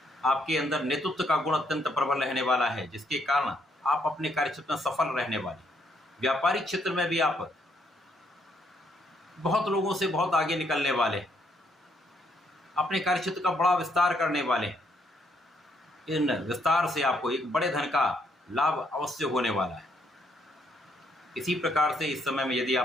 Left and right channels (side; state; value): both; normal; correlation 0.73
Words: आपके अंदर नेतृत्व का गुण अत्यंत प्रबल रहने वाला है, जिसके कारण आप अपने कार्यक्षेत्र में सफल रहने वाले। व्यापारिक क्षेत्र में भी आप बहुत लोगों से बहुत आगे निकलने वाले, अपने कार्यक्षेत्र का बड़ा विस्तार करने वाले। इन विस्तार से आपको एक बड़े धन का लाभ अवश्य होने वाला है। इसी प्रकार से इस समय में यदि